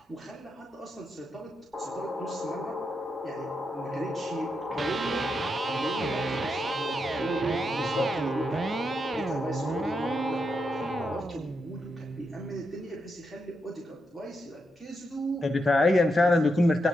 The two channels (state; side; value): normal; both; correlation 0.83